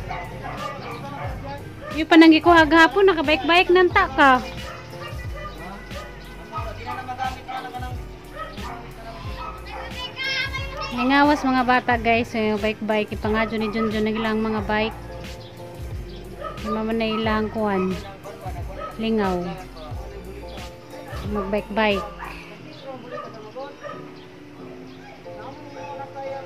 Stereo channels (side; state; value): both; identical; correlation 1.00